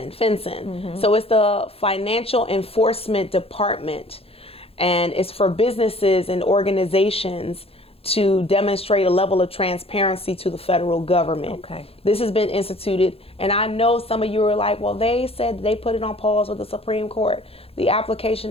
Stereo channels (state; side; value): late; right; 0.28 ms